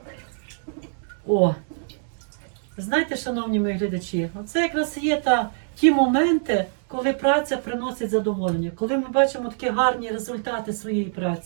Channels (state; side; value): silent; left; digital silence